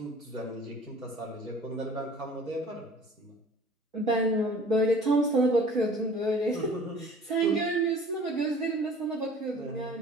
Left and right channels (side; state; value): both; normal; correlation 0.48